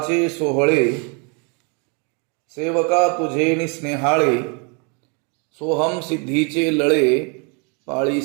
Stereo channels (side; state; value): left; quieter; 34.7 dB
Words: सोहळे सेवका तुझे स्नेहाळे, सोहम सिद्धीचे लळे